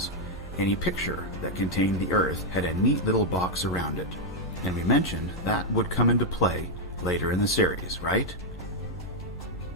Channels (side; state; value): both; normal; correlation -0.01